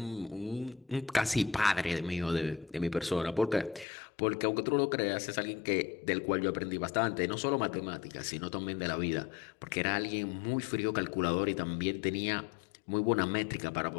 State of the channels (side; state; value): right; drops out; at 3.9 s